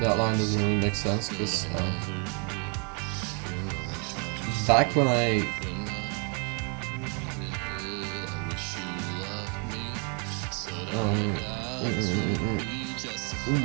that line doesn't really make sense because back when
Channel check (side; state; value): left; quieter; 37.3 dB